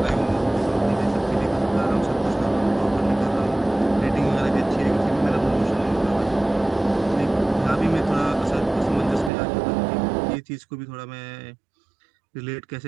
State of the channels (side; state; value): left; drops out; at 9.3 s